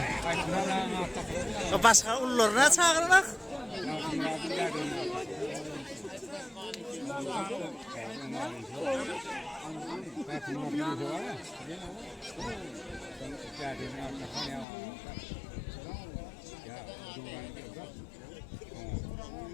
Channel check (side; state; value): right; drops out; at 14.7 s